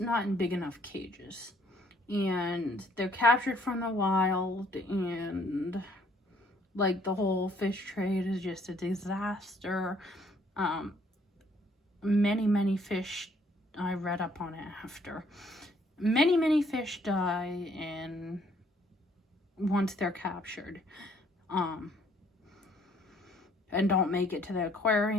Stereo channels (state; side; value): normal; both; correlation 0.64